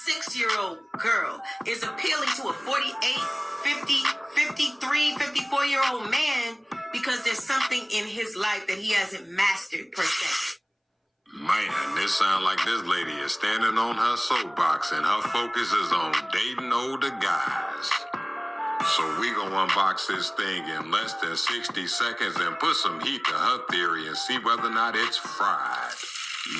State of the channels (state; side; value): identical; both; correlation 1.00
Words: girl is appealing to a 48, 50, 53, 54-year-old man because there's something in his life that he hasn't mastered per se. Man, this sound like this lady is standing on her soapbox and her focus is on dating older guys. So we gonna unbox this thing in less than 60 seconds and put some heat to her theory and see whether or not it's fried.